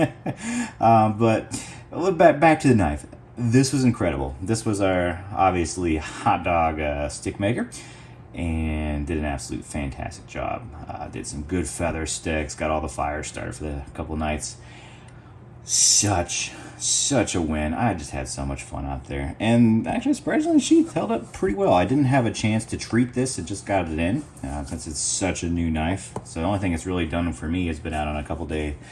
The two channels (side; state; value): both; identical; correlation 1.00